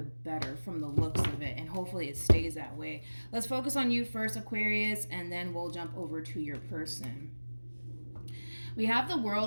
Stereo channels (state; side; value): inverted; both; correlation -1.00